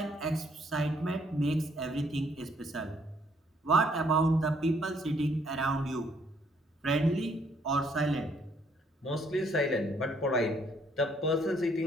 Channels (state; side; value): normal; both; correlation 0.67